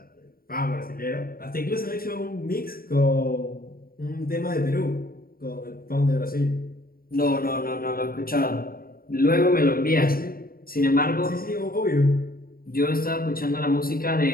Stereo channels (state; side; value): late; right; 0.43 ms